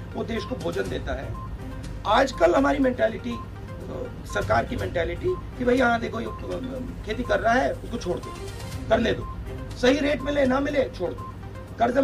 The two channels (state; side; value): identical; both; correlation 1.00